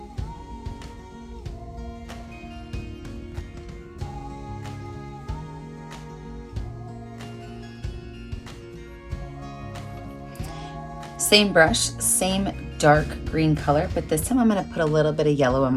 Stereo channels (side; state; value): both; identical; correlation 1.00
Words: Same brush, same dark green color, but this time I'm gonna put a little bit of yellow on